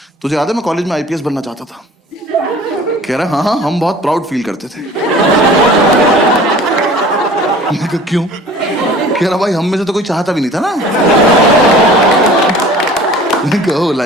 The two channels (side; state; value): both; normal; correlation 0.46